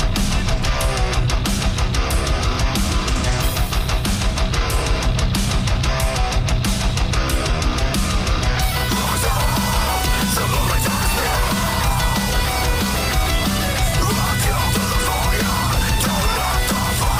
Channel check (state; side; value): identical; both; correlation 1.00